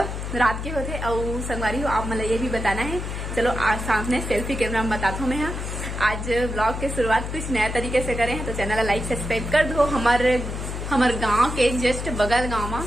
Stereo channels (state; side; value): noise; left; hum, 5 dB below the sound